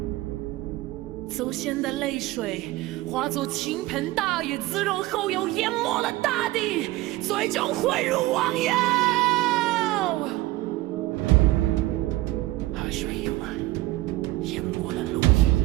祖先的泪水化作倾盆大雨，滋润后又淹没了大地，最终汇入汪洋。海水溢满，淹没了陆地。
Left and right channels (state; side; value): quieter; left; 18.3 dB